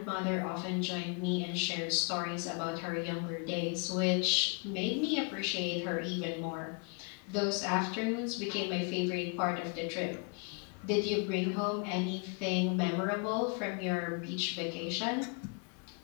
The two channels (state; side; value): quieter; right; 35.8 dB